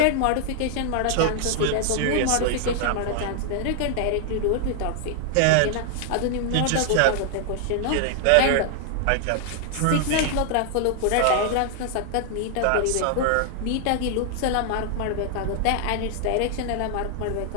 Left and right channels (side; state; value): both; different; correlation 0.00